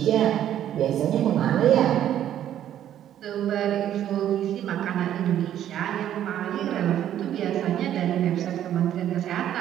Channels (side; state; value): left; quieter; 11.1 dB